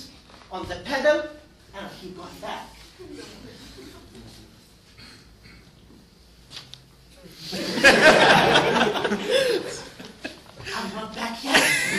on the pedal, and I'll keep going back. I'm not back yet.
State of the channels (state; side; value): identical; both; correlation 1.00